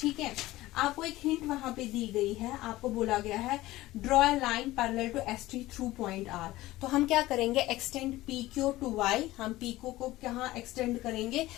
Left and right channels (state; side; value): quieter; right; 17.3 dB